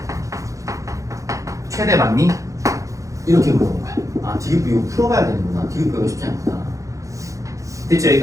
최대 맞니? 이렇게 물어본 거야. 아, 디귿부 이거 풀어봐야 되는구나. 디귿부가 쉽지 않구나. 됐죠?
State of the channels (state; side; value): late; left; 0.15 ms